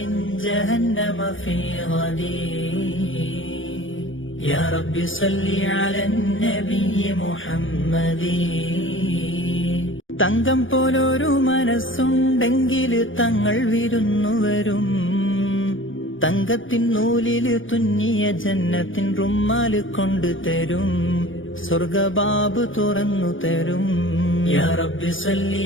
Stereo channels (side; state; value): right; late; 0.57 ms